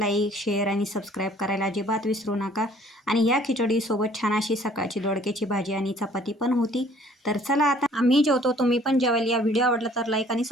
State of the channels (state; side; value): normal; both; correlation 0.56